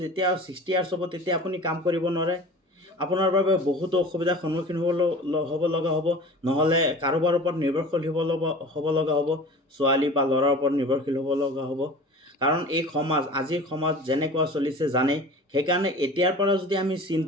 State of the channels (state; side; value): normal; both; correlation 0.39